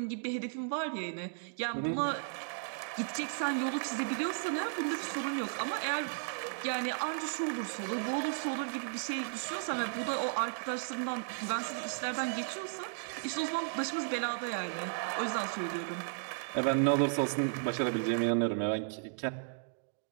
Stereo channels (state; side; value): silent; left; digital silence